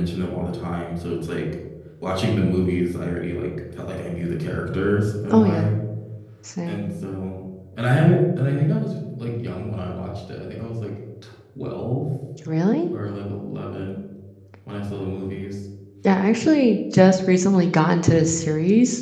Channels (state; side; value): identical; both; correlation 1.00